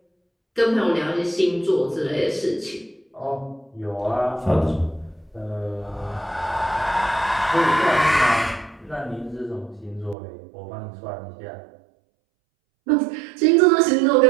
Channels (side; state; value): left; drops out; at 10.2 s